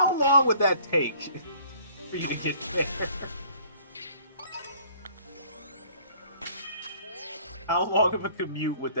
long would that take for you to get there? How long of a commute would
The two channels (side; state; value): both; inverted; correlation -0.56